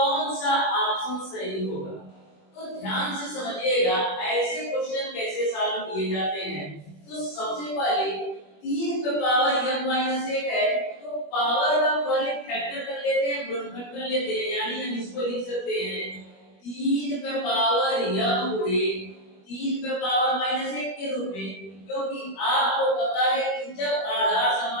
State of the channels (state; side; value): late; right; 21 ms